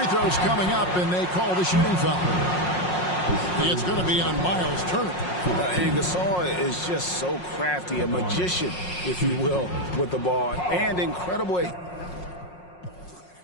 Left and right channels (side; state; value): right; late; 5.5 ms